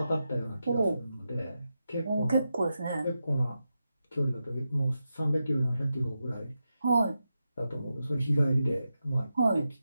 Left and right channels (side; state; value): both; inverted; correlation -0.89